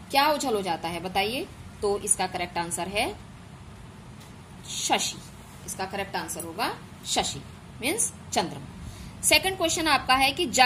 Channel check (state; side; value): identical; both; correlation 1.00